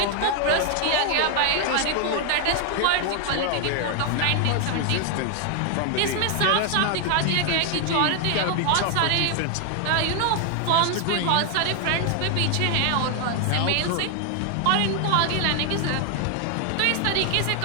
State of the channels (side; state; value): both; different; correlation 0.00